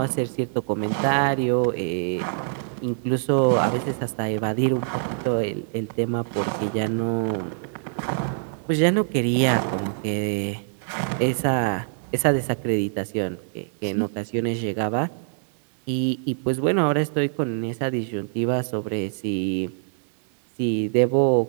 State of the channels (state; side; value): silent; left; digital silence